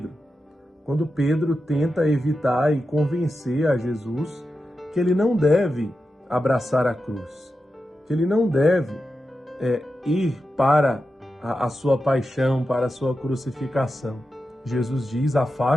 quando Pedro tenta evitar e convencer a Jesus que ele não deve abraçar a cruz, que ele não deve ir para a sua paixão, para a sua crucificação. Jesus diz:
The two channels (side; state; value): both; normal; correlation 0.90